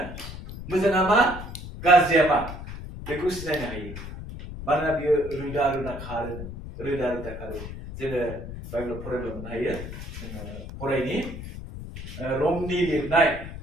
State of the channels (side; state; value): left; noise; rumble, 10 dB below the sound